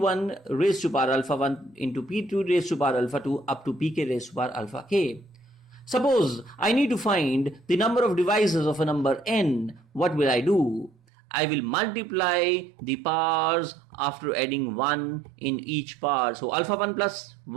raised to power alpha 1 into p2 raised to power alpha 2 up to pk raised to power alpha k. Suppose I need to find the number of divisors of a number n. What will I do? I will multiply the powers after adding 1 in each power. So alpha 1 plus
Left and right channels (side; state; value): left; drops out; at 11.0 s